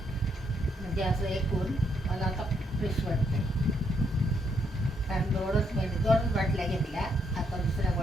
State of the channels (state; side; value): normal; both; correlation 0.74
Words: म्हणजे असं एकूण मला आता फ्रेश वाटतंय. कारण 2 बाटल्या घेतल्या, आता दुसऱ्या